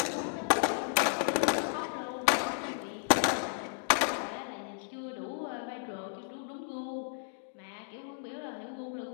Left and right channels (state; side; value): silent; right; digital silence